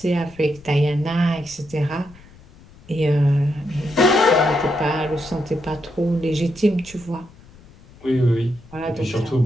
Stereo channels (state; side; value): noise; left; rumble, 23 dB below the sound